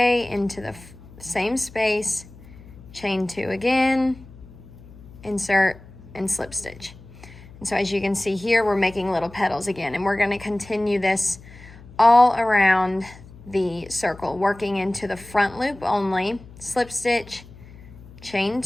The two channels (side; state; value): left; noise; hum, 20 dB below the sound